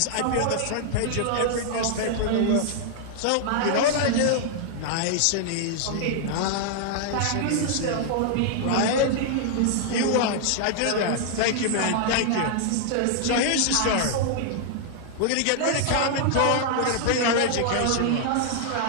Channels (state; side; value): different; both; correlation -0.01